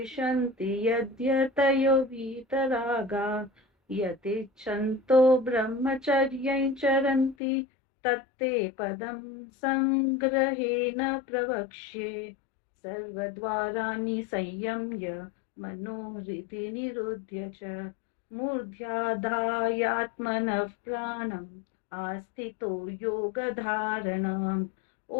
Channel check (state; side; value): drops out; right; at 7.4 s